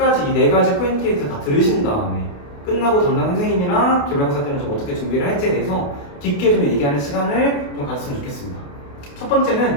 이 4가지 포인트에 대해서 다 들으신 다음에 끝나고 담당 선생님이랑 기말고사 때는 좀 어떻게 준비를 할지에 대해서 깊게 좀 얘기하는 시간을 좀 가졌으면 좋겠습니다. 첫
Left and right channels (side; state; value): right; late; 28 ms